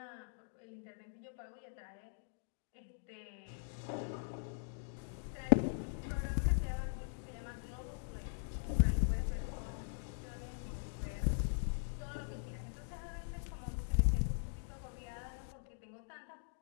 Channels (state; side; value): silent; right; digital silence